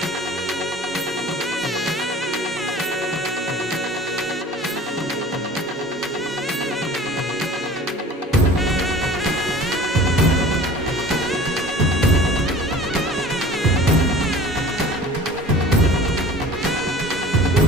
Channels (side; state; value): both; normal; correlation 0.43